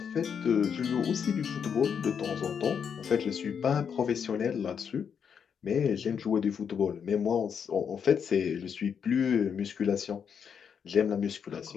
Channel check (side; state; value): right; quieter; 7.2 dB